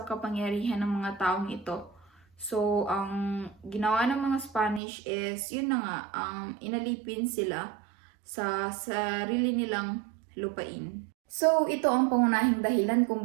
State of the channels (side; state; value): left; drops out; at 4.8 s